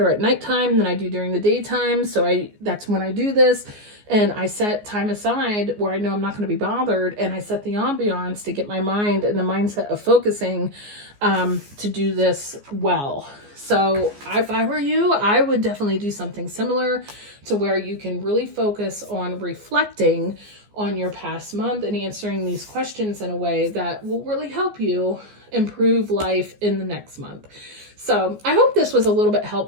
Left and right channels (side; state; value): left; late; 14 ms